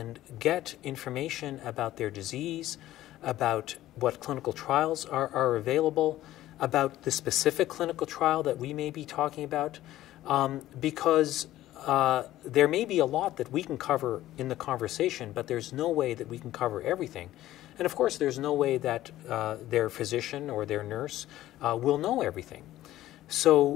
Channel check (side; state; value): right; quieter; 14.5 dB